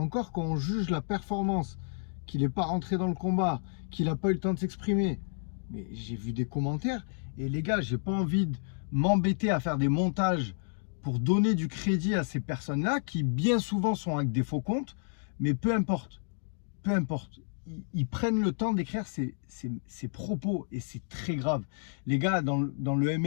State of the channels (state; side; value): silent; right; digital silence